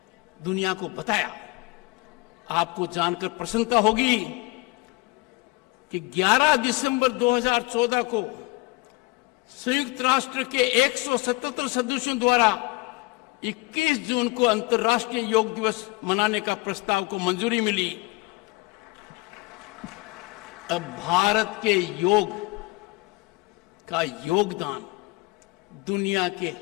दुनिया को बताया। आपको जानकर प्रसन्नता होगी कि 11 दिसंबर 2014 को संयुक्त राष्ट्र के 177 सदस्यों द्वारा 21 जून को अंतर्राष्ट्रीय योग दिवस मनाने का प्रस्ताव को मंजूरी मिली। अब भारत के योग का योगदान दुनिया के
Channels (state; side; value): quieter; right; 24.3 dB